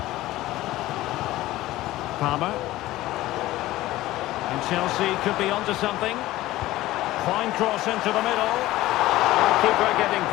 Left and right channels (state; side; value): quieter; right; 16.5 dB